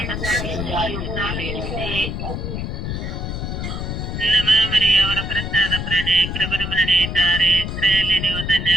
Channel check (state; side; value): noise; left; rumble, 4 dB below the sound